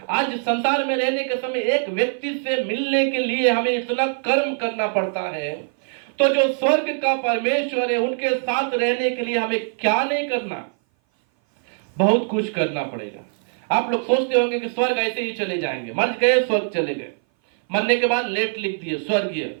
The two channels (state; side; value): silent; left; 58 dB below the other